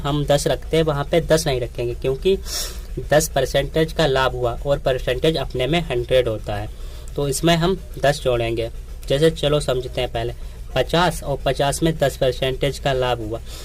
10 रखते हैं वहाँ पे 10 नहीं रखेंगे, क्योंकि 10% का लाभ हुआ और परसेंटेज अपने में 100 होता है, तो इसमें हम 10 जोड़ेंगे। जैसे चलो समझते हैं पहले 50 और 50 में 10% का लाभ हुआ,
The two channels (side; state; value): both; identical; correlation 1.00